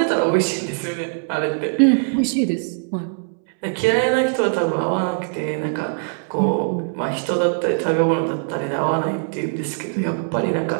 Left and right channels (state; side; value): silent; left; 65 dB below the other